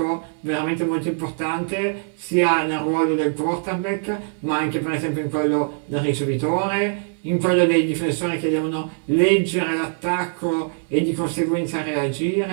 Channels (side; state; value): left; silent; digital silence